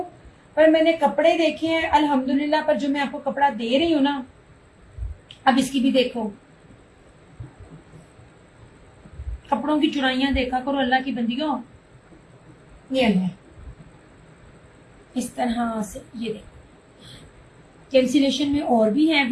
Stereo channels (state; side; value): identical; both; correlation 1.00